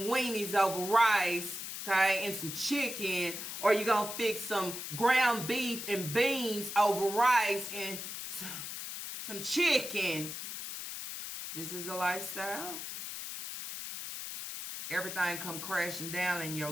weenies over rice, okay, and some chicken, or you gonna fix some ground beef and beans over rice and some chicken. This is the lifestyle. Everything come crashing down in your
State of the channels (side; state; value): left; noise; hiss, 7 dB below the sound